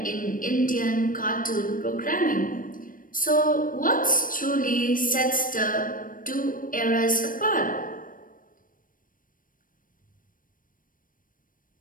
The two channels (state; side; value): late; right; 0.40 ms